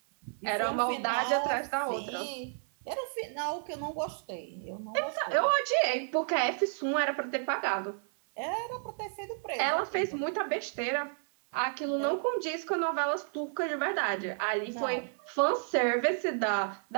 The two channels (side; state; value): left; silent; 57 dB below the other